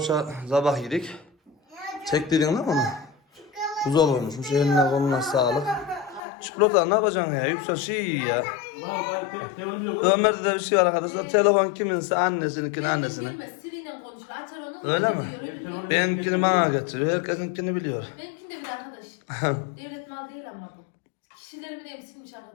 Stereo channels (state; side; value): drops out; right; at 6.2 s